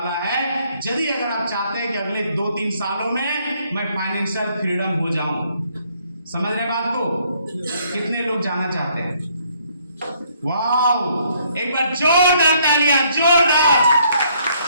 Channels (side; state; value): both; inverted; correlation -0.67